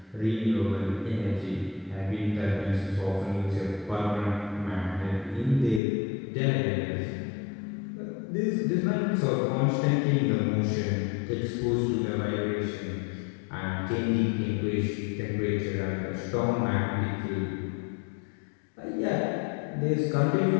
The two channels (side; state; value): right; drops out; at 5.8 s